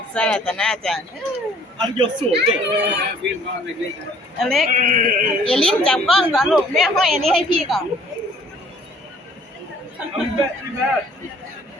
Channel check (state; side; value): normal; both; correlation 0.57